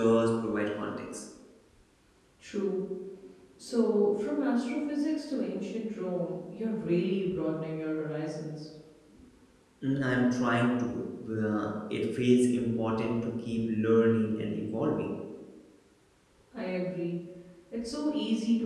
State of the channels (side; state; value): both; identical; correlation 1.00